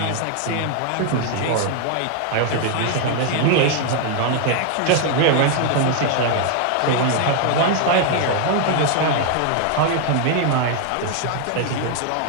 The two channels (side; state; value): both; different; correlation 0.00